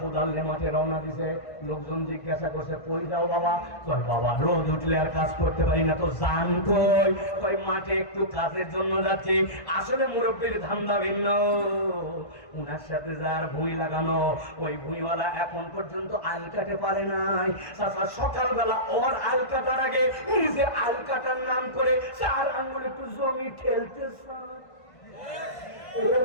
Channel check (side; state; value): right; late; 1.5 ms